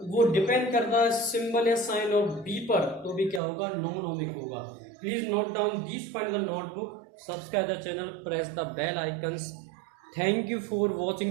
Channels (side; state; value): left; drops out; at 3.4 s